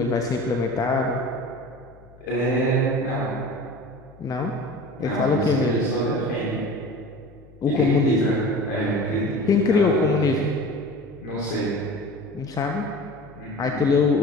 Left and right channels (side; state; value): left; noise; hum, 24 dB below the sound